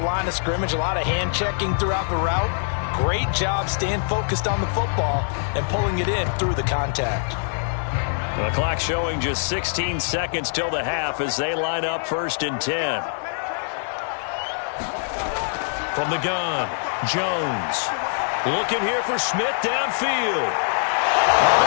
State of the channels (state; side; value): silent; right; digital silence